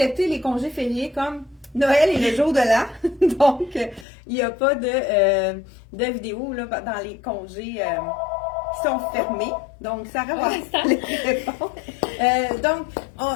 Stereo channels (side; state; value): right; drops out; at 4.0 s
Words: les congés fériés comme Noël et le jour de l'an. Donc, il n'y a pas de vidéos là, dans les congés qui sont fermés. Donc, Sarah va les répondre.